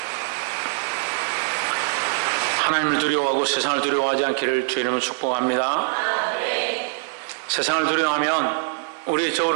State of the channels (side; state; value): left; silent; 58 dB below the other